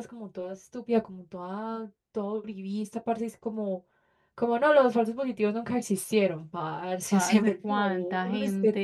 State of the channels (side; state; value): both; identical; correlation 1.00